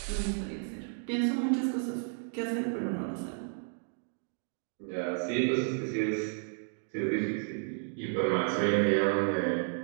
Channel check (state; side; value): silent; left; 56 dB below the other